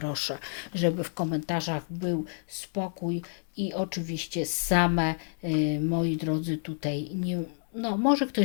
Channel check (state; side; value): silent; right; digital silence